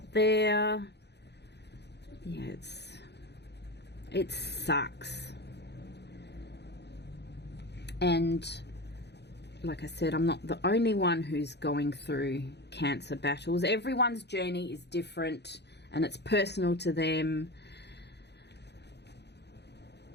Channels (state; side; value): late; right; 0.49 ms